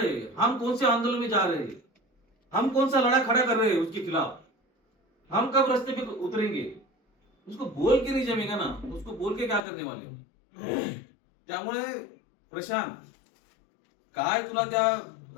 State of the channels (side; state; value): right; drops out; at 9.6 s